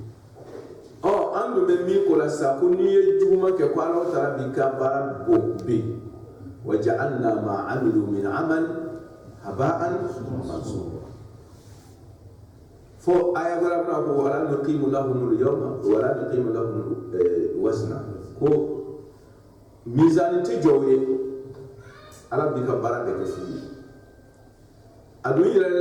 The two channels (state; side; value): identical; both; correlation 1.00